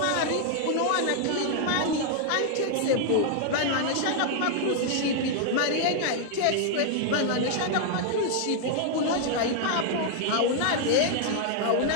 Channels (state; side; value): different; both; correlation 0.00